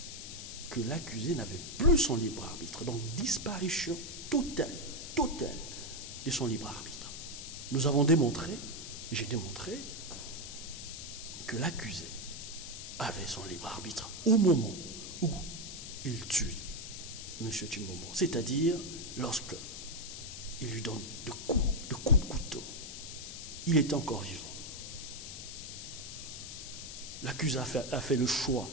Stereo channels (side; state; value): left; noise; hiss, 9 dB below the sound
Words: que l'accusé n'avait plus son libre arbitre. Donc disparition totale de son libre arbitre. Nous avons démontré, j'ai démontré, que l'accusé avait son libre arbitre au moment où il tue M. Chimbombo. C'est-à-dire lorsque il lui donne de coups de couteau. Il est encore vivant. L'accusé a fait le choix